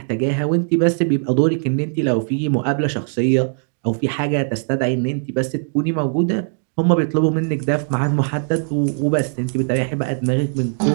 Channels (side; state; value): left; silent; digital silence